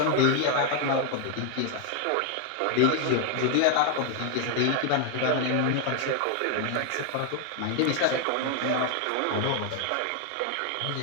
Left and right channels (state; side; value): different; both; correlation 0.00